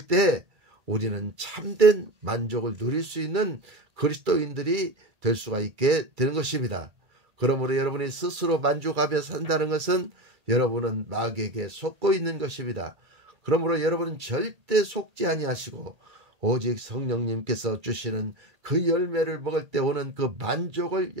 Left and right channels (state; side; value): late; left; 2.3 ms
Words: 때 우리는 참된 만족을 누릴 수 있는 그리스도인들이 될 수가 있게 되는 것입니다. 그러므로 여러분이 스스로 만족하며 산다는 것은 여러분은 마귀에게 속고 있는 것입니다. 그러므로 여러분은 절대 속지 아니하시고 오직 성령님께서 주시는 그 열매를 먹을 때 오는 그 만족을